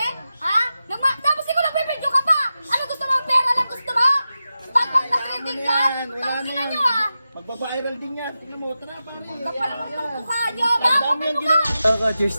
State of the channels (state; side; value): inverted; both; correlation -0.92